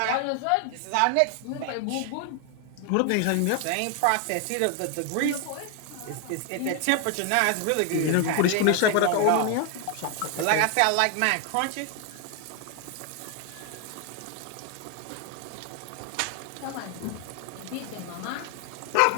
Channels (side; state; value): both; different; correlation 0.00